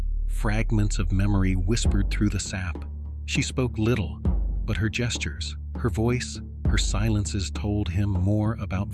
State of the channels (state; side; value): identical; both; correlation 1.00